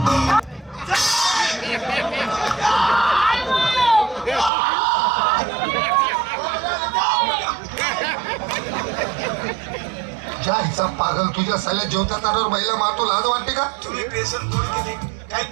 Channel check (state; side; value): drops out; left; at 4.5 s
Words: जायचा पागल तुझ्या साल्या जेवता ताटावर महिला मारतो लाज वाटते का तुम्ही बेसन पोळी केली काही